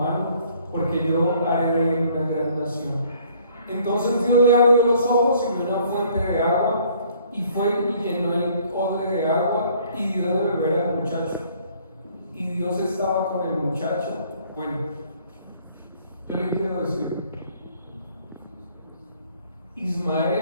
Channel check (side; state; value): both; inverted; correlation -0.60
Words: porque yo haré de él una gran nación. Entonces Dios le abrió los ojos y vio una fuente de agua, y fue y llenó el odre de agua y dio de beber al muchacho. Y Dios estaba con el muchacho. Bueno, yo le quiero decir,